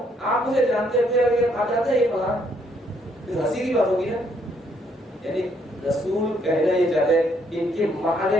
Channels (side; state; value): both; normal; correlation 0.70